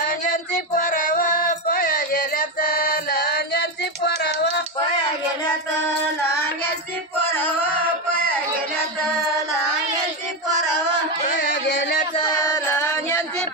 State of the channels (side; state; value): both; normal; correlation 0.10